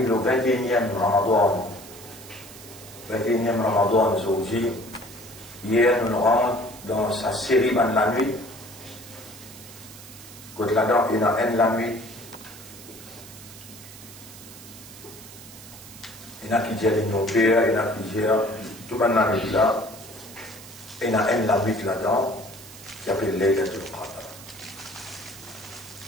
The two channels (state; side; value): noise; right; hiss, 17 dB below the sound